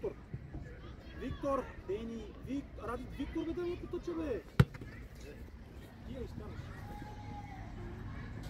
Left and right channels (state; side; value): identical; both; correlation 1.00